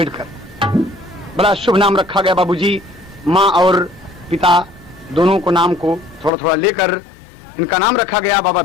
बड़ा शुभ नाम रखा गया बाबूजी। माँ और पिता दोनों को नाम को थोड़ा थोड़ा लेकर इनका नाम रखा गया बाबा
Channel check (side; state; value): right; drops out; at 6.3 s